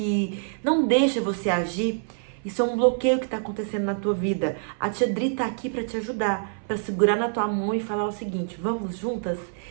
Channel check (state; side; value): silent; left; 57 dB below the other